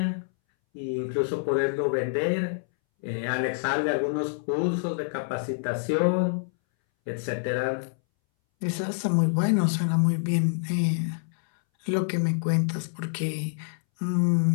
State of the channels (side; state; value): right; silent; 60 dB below the other